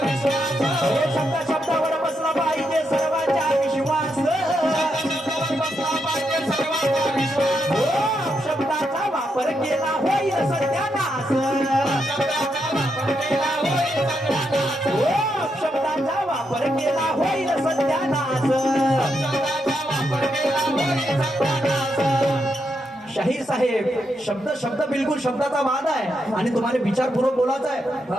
हे शब्द शब्दावर बसला पाहिजे सर्वांचा विश्वास शब्दाचा वापर केला होईल सत्यानाश शब्दाचा वापर केला होईल सत्यानाश शाहीर साहेब शब्द शब्द बिलकुल शब्दाचा वाद आहे आणि तुम्हाला विचारपूर्वक बोलायचं आहे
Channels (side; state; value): both; normal; correlation 0.82